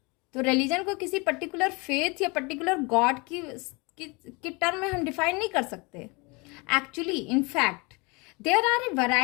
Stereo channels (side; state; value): right; quieter; 27.8 dB